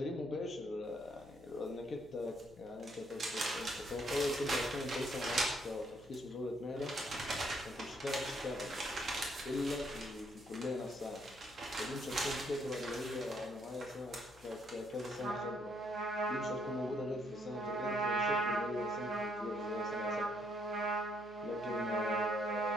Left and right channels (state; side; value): noise; left; hum, 23 dB below the sound